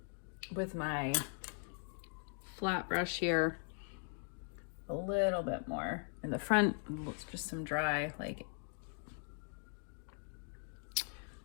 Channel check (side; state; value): right; silent; 51 dB below the other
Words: with my flat brush here, a little bit more in the front. It's just some dry, like,